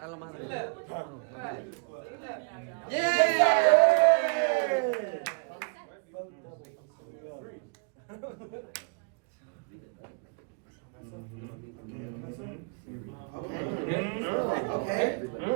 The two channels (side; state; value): left; quieter; 37.3 dB